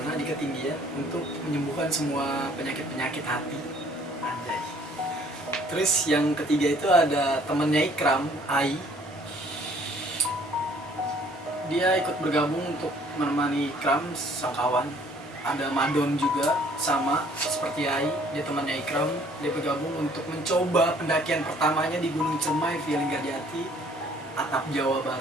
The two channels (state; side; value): normal; both; correlation 0.59